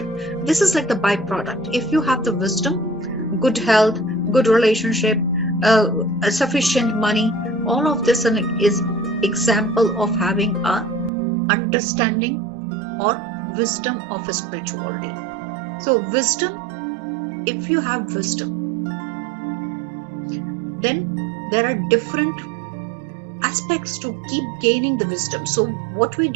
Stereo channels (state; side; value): drops out; left; at 11.1 s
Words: This is like the byproduct. If you have the wisdom, good health, good relationship, sufficient money, all of this is example of having a understanding or wisdom of a spirituality. So wisdom, if you have wisdom, then there are different aspects to keep gaining the wisdom. So what we